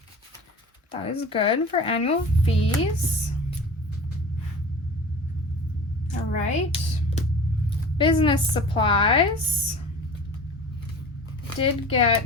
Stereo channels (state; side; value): normal; both; correlation 0.38